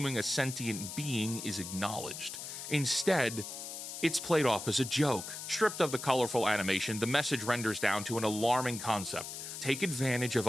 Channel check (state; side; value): noise; left; hiss, 8 dB below the sound